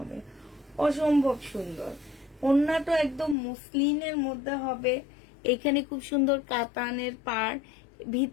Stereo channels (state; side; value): drops out; right; at 3.4 s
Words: অসম্ভব সুন্দর ওড়নাটা, একদম মুসলিমের মধ্যে হবে। এখানে খুব সুন্দর কাতানের পাড়,